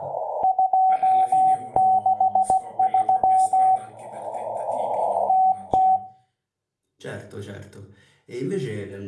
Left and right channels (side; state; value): both; identical; correlation 1.00